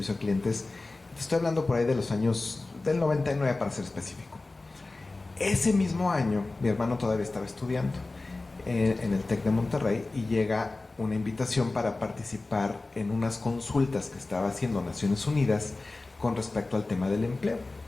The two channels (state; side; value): quieter; right; 3.3 dB